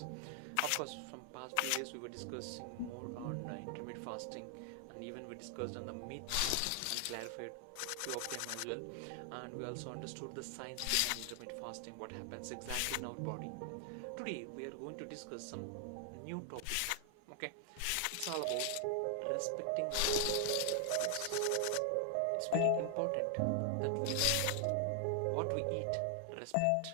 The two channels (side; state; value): both; different; correlation 0.00